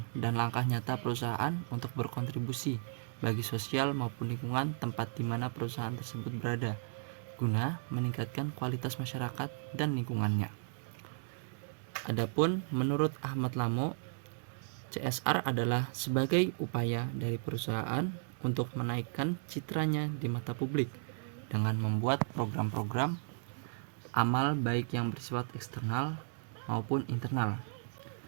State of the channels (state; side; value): silent; left; digital silence